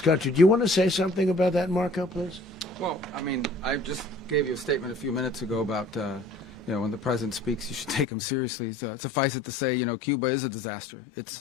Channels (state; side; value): drops out; right; at 8.1 s